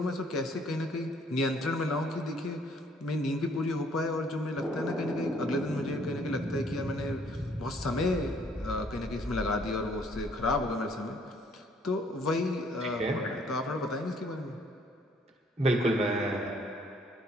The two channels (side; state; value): both; normal; correlation 0.62